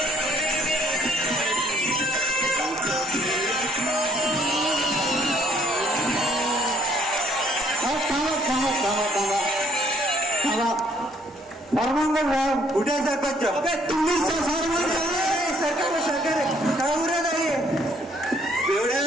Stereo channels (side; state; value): both; normal; correlation 0.65